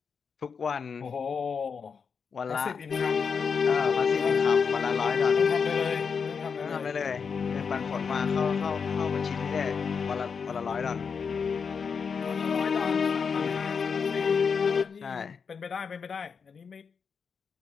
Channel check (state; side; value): quieter; right; 5.9 dB